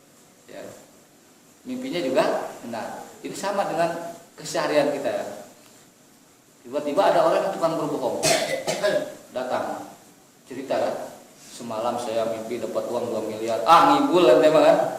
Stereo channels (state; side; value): identical; both; correlation 1.00